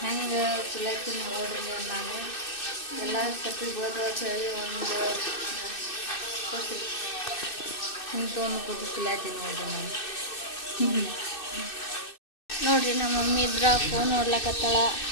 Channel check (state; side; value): late; right; 2.6 ms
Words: ಹೆಂಗೆ ಸುಲತ್ತೀನಿ ನೋಡ್ರಿ. ನಾನು ಎಲ್ಲ ಸತಿ ಬೋದ ಹೇಳಿ ಒಂದು ಇಂಥೊಂದು ಕೂತು ಸುಲತ್ತೀನಿ ನೋಡ್ರಿ ನಾನು. ನೋಡ್ರಿ ನಮ್ಮ ಮಮ್ಮಿ ಇದ್ರ ಫೋನ್ ನೋಡ್ಲಕತ್ತಾಳ.